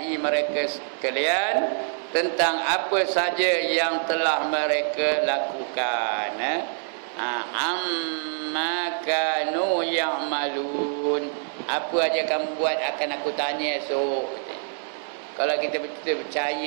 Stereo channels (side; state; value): left; silent; digital silence